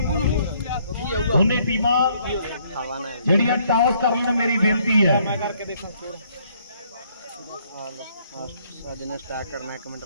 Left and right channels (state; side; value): inverted; both; correlation -0.67